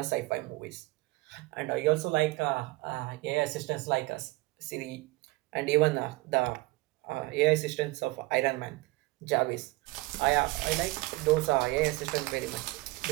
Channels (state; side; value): quieter; left; 21.0 dB